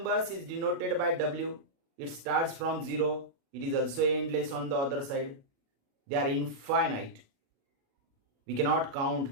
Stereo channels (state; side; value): late; left; 36 ms